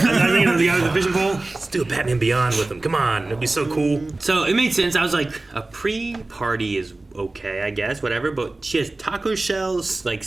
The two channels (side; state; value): left; quieter; 3.0 dB